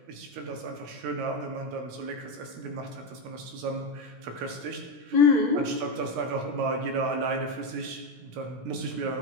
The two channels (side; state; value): left; late; 16 ms